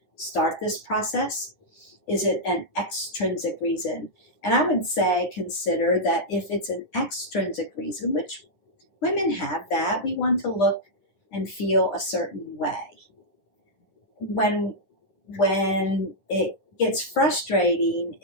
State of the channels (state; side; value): late; right; 10 ms